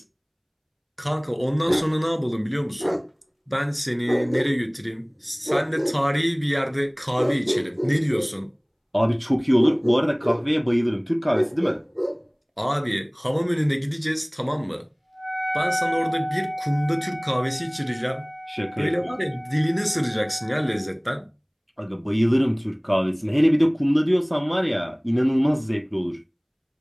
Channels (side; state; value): both; identical; correlation 1.00